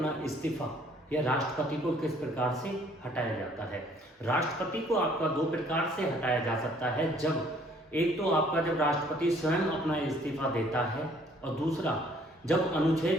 इस्तीफा या राष्ट्रपति को किस प्रकार से हटाया जाता है। राष्ट्रपति को आपका दो प्रकार से हटाया जा सकता है। जब एक तो आपका जब राष्ट्रपति स्वयं अपना इस्तीफा देता है, और दूसरा जब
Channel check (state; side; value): normal; both; correlation 0.60